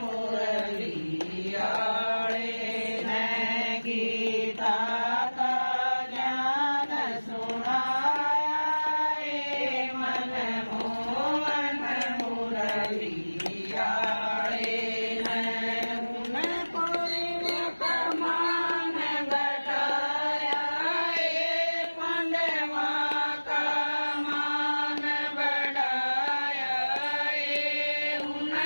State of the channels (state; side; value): inverted; both; correlation -1.00